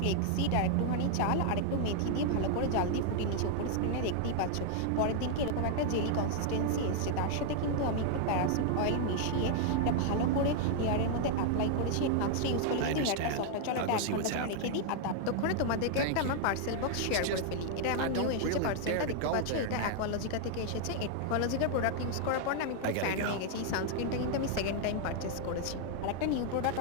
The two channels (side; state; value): both; different; correlation 0.00